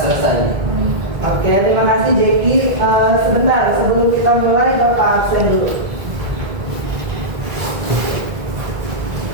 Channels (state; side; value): late; left; 1.8 ms